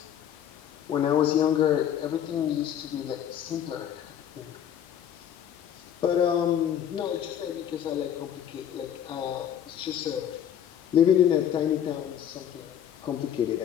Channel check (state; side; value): quieter; right; 9.7 dB